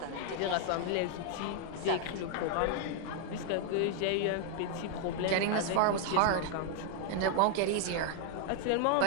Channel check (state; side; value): different; both; correlation 0.00